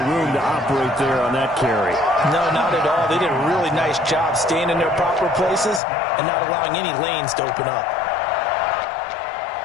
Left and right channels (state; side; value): drops out; right; at 5.8 s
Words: room to operate there on that carry. No, not at all. They did a really nice job staying in their proper places and not allowing any lanes to open up.